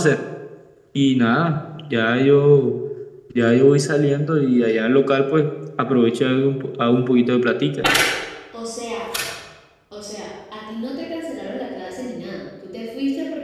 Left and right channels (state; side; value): identical; both; correlation 1.00